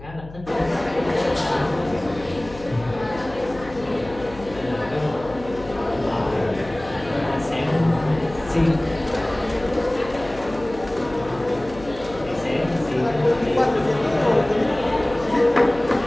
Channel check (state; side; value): noise; left; hum, 17 dB below the sound